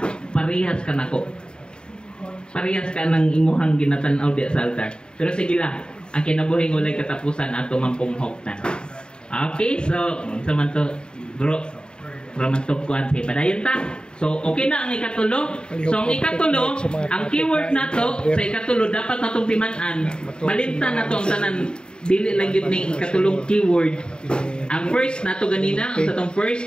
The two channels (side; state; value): right; late; 0.049 ms